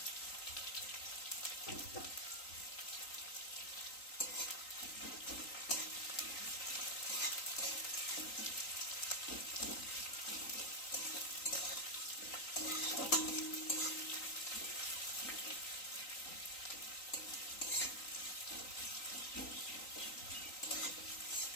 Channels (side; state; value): right; late; 3.9 ms